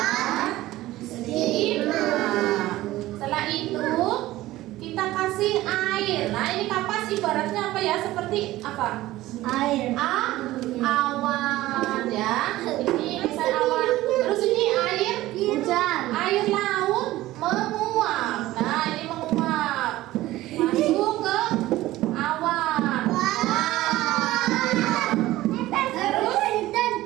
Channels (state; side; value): quieter; left; 16.5 dB